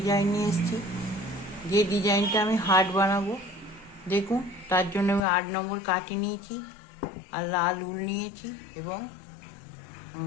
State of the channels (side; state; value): right; drops out; at 5.2 s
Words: निये एसेछि जे डिजाइनटा आमी हार्ट बानाबो। देखुन तार जोन्नो आमी 8 नम्बर काटि नियेछि और लाल उल नियेछि एबं